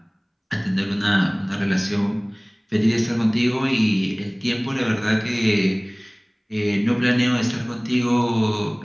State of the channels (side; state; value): both; identical; correlation 1.00